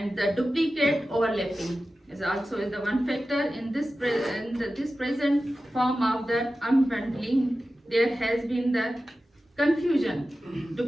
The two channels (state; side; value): normal; both; correlation 0.94